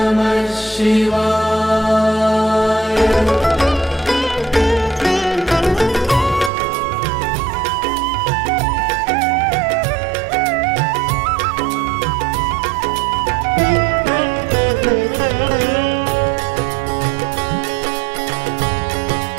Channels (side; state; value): left; drops out; at 6.5 s